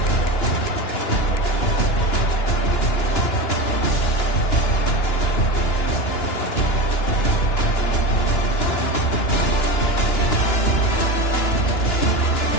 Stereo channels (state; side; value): late; right; 2.9 ms